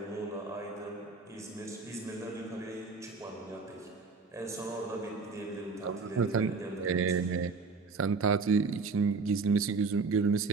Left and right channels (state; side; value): quieter; left; 4.5 dB